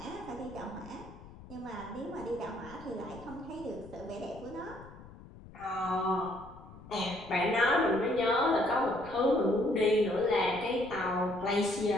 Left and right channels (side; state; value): left; noise; rumble, 18 dB below the sound